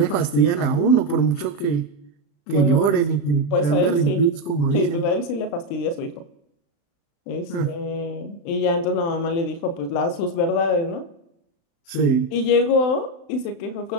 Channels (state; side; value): late; right; 35 ms